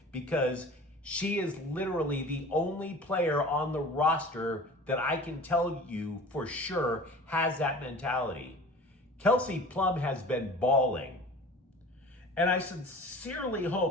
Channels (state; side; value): normal; both; correlation 0.40